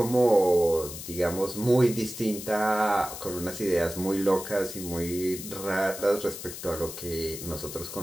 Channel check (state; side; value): noise; left; hiss, 10 dB below the sound